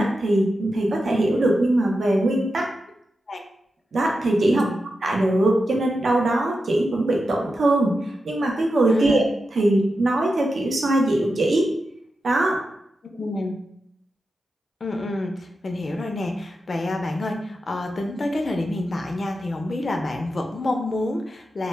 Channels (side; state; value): both; normal; correlation 0.90